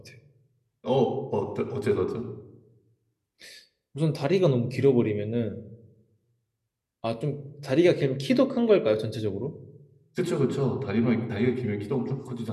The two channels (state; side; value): identical; both; correlation 1.00